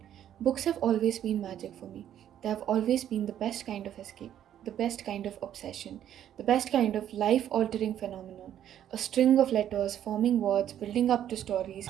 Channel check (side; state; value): left; quieter; 10.7 dB